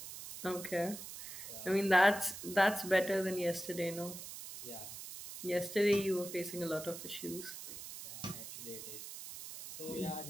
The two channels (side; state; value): right; noise; hiss, 10 dB below the sound